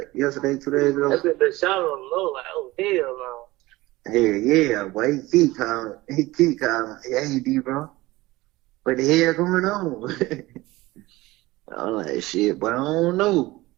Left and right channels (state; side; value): quieter; left; 19.4 dB